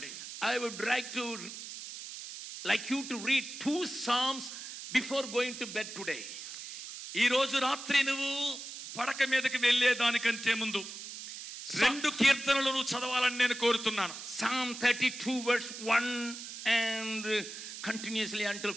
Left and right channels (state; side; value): noise; right; hiss, 10 dB below the sound